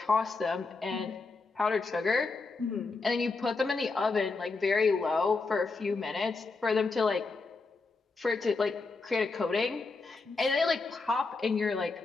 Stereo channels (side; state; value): right; quieter; 4.0 dB